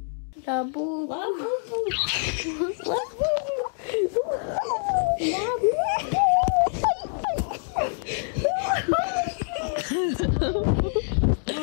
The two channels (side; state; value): right; silent; digital silence